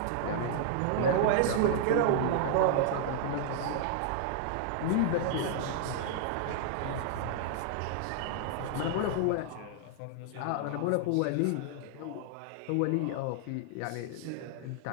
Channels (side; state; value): both; different; correlation -0.01